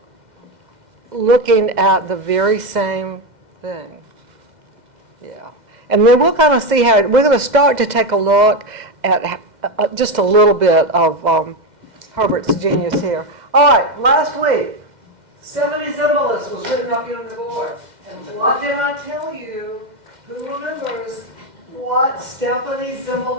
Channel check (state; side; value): late; left; 2.0 ms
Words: looking at the very same thing. Yeah. And then we'll kind of see how, we're going to start to take a look at just a little bit of Herbert's genius here. All right, last week, Stephanie Zimbalist was written up here on the board. And what did I tell you? Who remembers what Stephanie